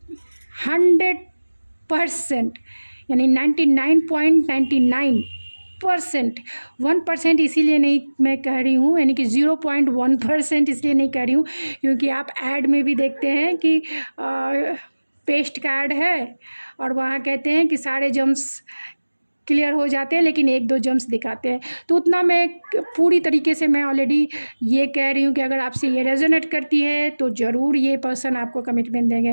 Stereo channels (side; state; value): both; inverted; correlation -1.00